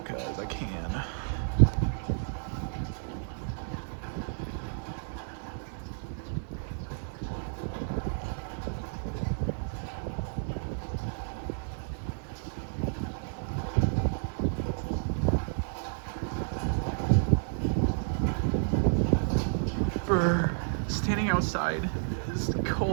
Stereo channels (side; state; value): left; silent; 57 dB below the other